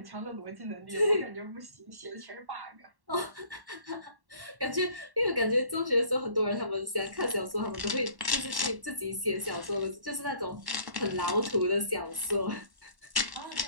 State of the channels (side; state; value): left; late; 1.1 ms